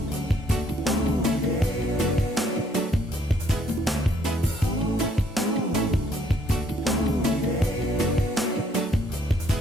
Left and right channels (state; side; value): normal; both; correlation 0.66